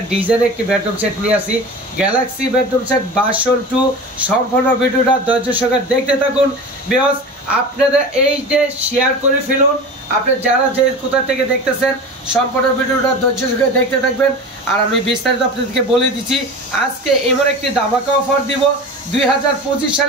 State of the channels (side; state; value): both; normal; correlation 0.32